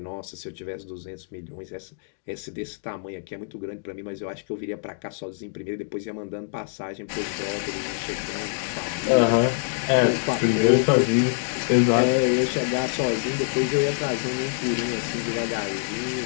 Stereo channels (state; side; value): silent; right; digital silence